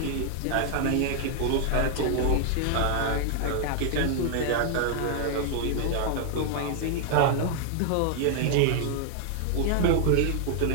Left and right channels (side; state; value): both; different; correlation 0.00